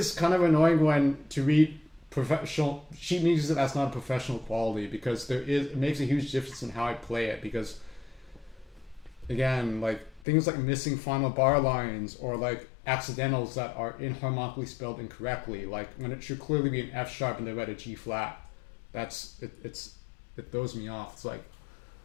kind of annoying when to read professional sheet music that's not a professional quality, because it makes a huge difference in how I play it, because again, like things like missing final bar lines or like accidentals that are inharmonically spelled incorrectly, like when it should clearly be an F sharp and they read a G flat. It throws me off. It's like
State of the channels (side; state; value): right; drops out; at 10.2 s